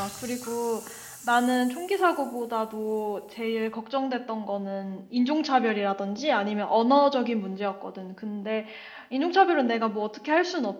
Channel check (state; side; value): identical; both; correlation 1.00